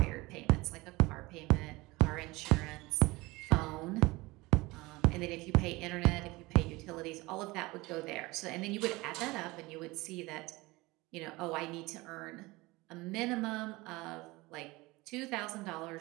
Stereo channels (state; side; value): quieter; left; 21.9 dB